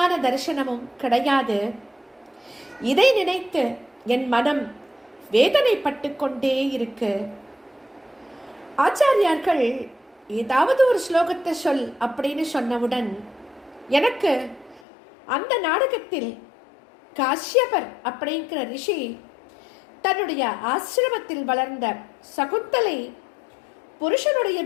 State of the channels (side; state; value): right; drops out; at 14.8 s